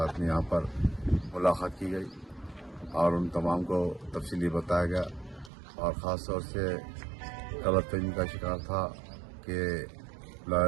میں یہاں پر ملاقات کی گئی اور ان تمام کو تفصیلی بتایا گیا اور خاص طور سے غلط فہمی کا شکار تھا کہ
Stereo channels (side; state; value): left; drops out; at 5.5 s